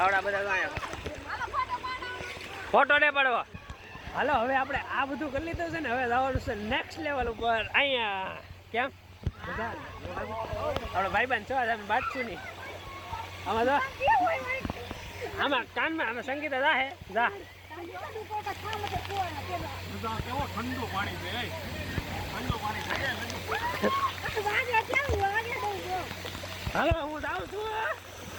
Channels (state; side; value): identical; both; correlation 1.00